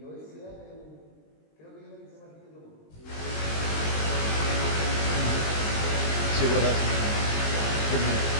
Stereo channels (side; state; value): right; late; 20 ms